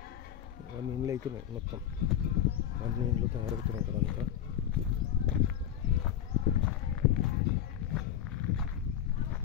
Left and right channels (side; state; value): right; quieter; 10.2 dB